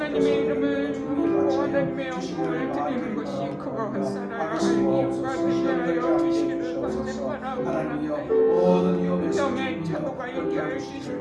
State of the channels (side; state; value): both; identical; correlation 1.00